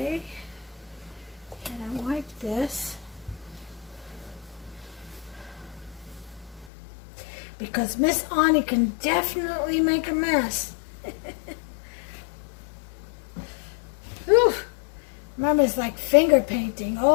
And I wipe this. Because Miss Ani can definitely make a mess. Whew. Mama's like finger painting.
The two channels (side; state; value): right; drops out; at 6.7 s